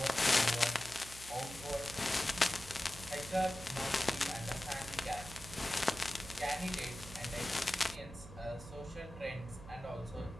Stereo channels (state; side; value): noise; right; hum, 15 dB below the sound